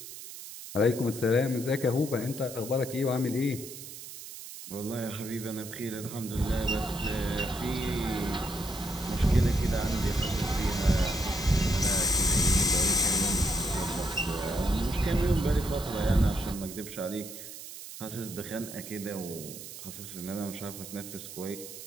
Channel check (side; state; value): right; noise; hiss, 12 dB below the sound